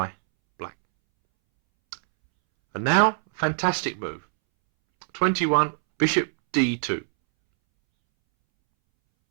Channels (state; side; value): silent; left; 63 dB below the other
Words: black. And now, fantastic move. 21, bishop d2.